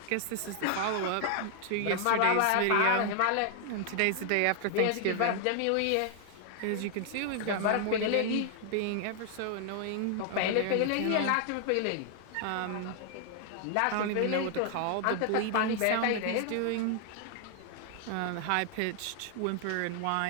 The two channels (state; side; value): different; both; correlation 0.00